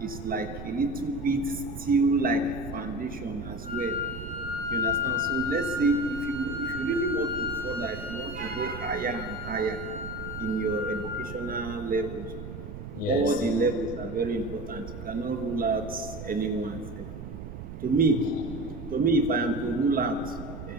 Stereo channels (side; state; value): right; noise; rumble, 10 dB below the sound